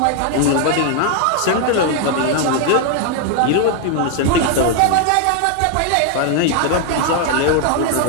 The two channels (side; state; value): both; different; correlation 0.00